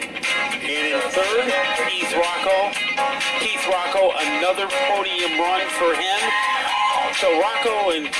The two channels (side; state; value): both; identical; correlation 1.00